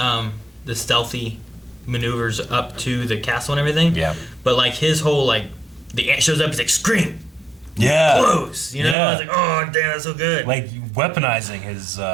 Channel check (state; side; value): drops out; left; at 9.0 s